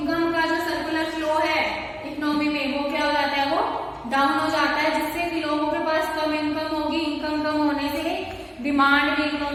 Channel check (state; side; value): identical; both; correlation 1.00